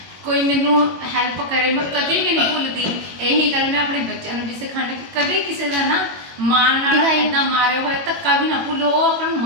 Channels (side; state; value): left; late; 21 ms